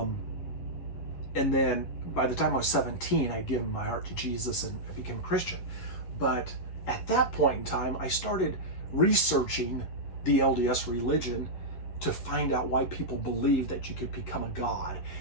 then by the time I was 17, I'd given my heart to Jesus and I became a Christian. But at that point in time, I started researching the LDS religion to find out why people believe that you could become a god,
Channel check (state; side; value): late; right; 11 ms